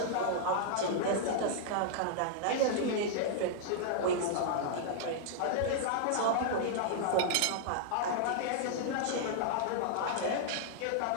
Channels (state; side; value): different; both; correlation -0.01